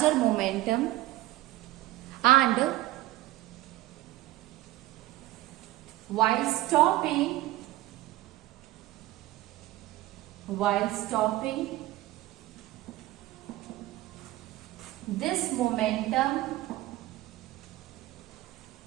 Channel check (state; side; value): quieter; left; 16.9 dB